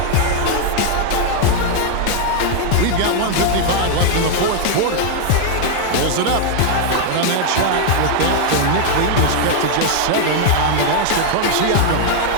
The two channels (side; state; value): both; different; correlation 0.00